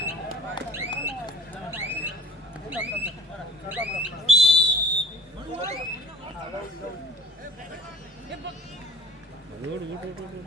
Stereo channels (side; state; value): both; normal; correlation 0.50